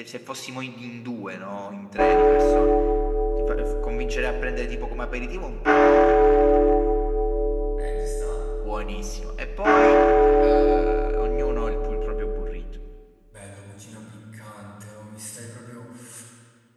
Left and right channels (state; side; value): identical; both; correlation 1.00